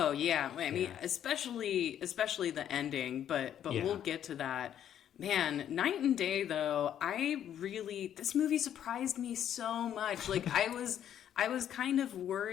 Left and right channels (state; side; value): quieter; right; 10.1 dB